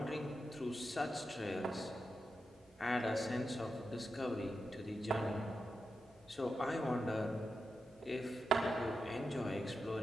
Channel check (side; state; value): both; normal; correlation 0.89